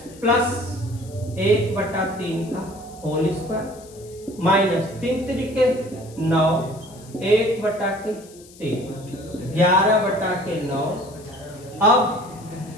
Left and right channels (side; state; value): left; noise; hiss, 22 dB below the sound